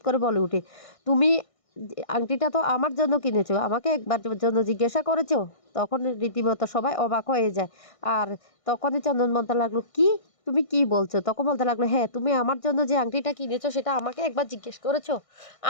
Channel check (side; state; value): right; late; 1.6 ms